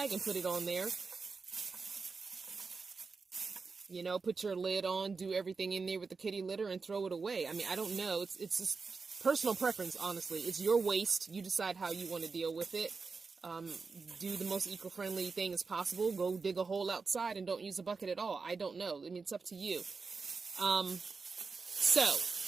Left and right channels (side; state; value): left; quieter; 4.6 dB